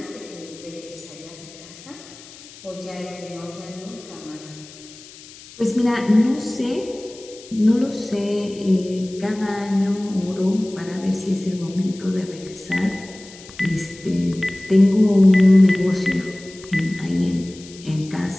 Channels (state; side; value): noise; left; hiss, 19 dB below the sound